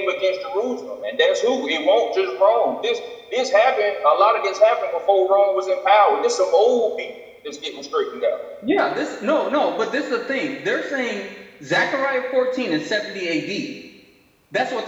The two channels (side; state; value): both; identical; correlation 1.00